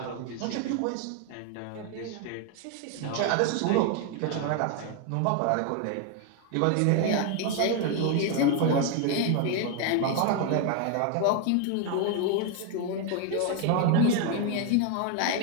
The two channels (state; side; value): different; both; correlation 0.00